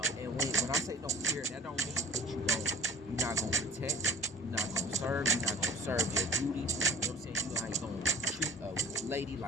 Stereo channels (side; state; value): both; normal; correlation 0.45